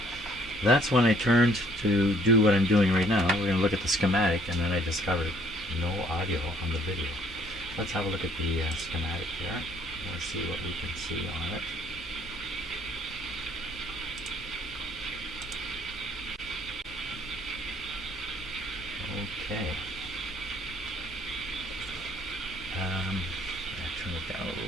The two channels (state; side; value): normal; both; correlation 0.62